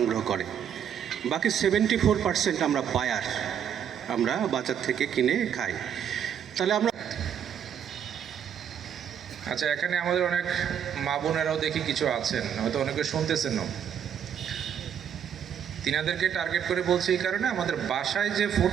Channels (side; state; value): left; quieter; 8.7 dB